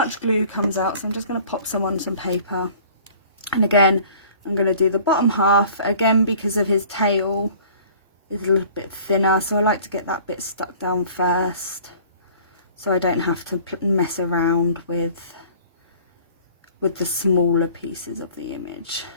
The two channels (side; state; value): both; inverted; correlation -0.50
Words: glue comes out, so I'm just going to pop some on some paper. And again, I'm going to do the bottom half again because of his tail is a little bit thinner, so I like to get that bit stuck down first so I don't have to mess around with the smaller pieces of the image,